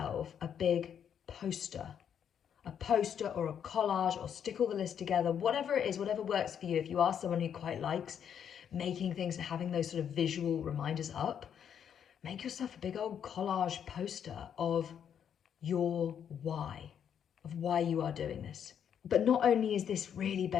a big poster or a collage, or stick all the lists together, whatever it is, whatever works for you. If you are someone who quite likes making things and having those sort of visual reminders up, make yourself a big old collage poster of your why, of why you are doing this. But not only is this really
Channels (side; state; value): right; quieter; 8.5 dB